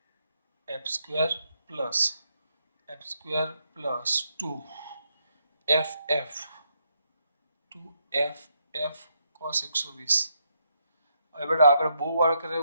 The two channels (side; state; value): both; inverted; correlation -0.77